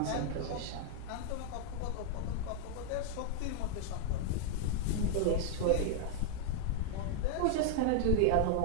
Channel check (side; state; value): both; different; correlation 0.00